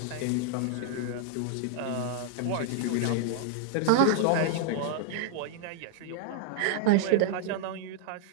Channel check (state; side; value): different; both; correlation -0.01